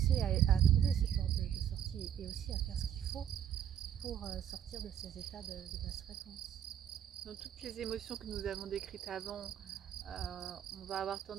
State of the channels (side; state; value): left; quieter; 9.8 dB